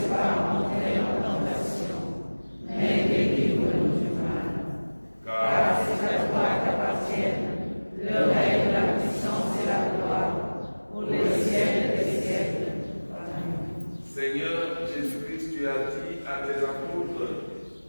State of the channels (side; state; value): both; inverted; correlation -1.00